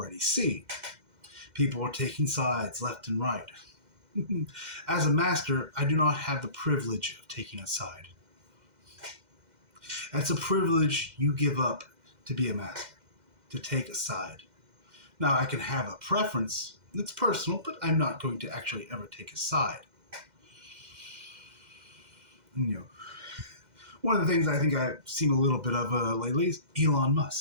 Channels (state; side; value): late; left; 2.1 ms